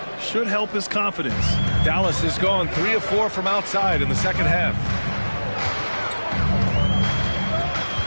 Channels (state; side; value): inverted; both; correlation -1.00